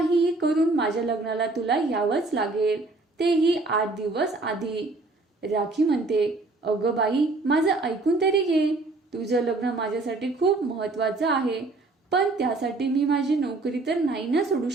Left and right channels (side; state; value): left; quieter; 3.3 dB